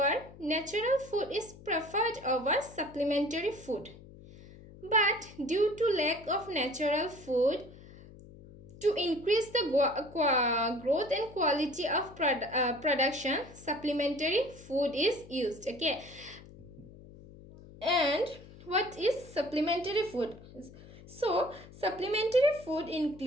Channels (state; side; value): noise; left; hum, 19 dB below the sound